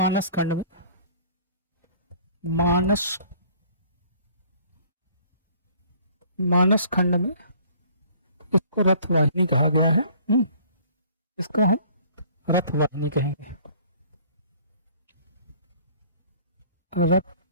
खंड में इसको रथवाहिनी कहा गया है। इसको हम रथवाहिनी कहेंगे,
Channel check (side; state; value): both; inverted; correlation -0.54